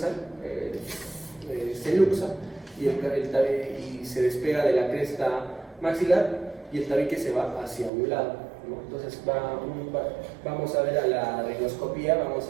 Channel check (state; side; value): drops out; left; at 7.9 s